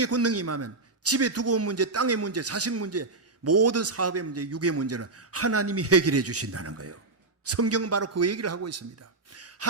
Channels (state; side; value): quieter; left; 3.4 dB